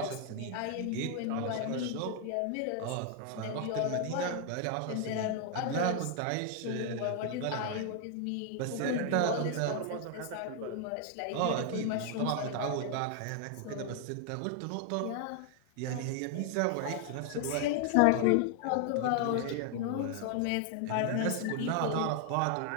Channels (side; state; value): both; different; correlation 0.00